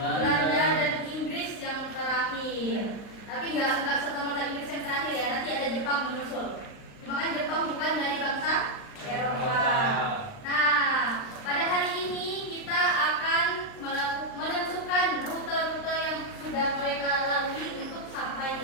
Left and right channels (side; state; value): right; late; 39 ms